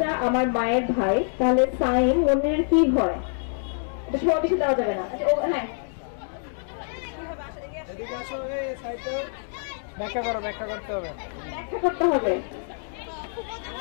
আমার মায়ের ভাই, তাহলে সাইম মনির কি হয়? এটা সময় বেশি দেওয়া যাবে না। আচ্ছা, ও হ্যাঁ, এদিকে আসো, এই সাইডে ব্যাখ্যা করো, ব্যাখ্যা করতে হবে। ব্যাখ্যা করতে হবে।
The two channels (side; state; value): right; silent; digital silence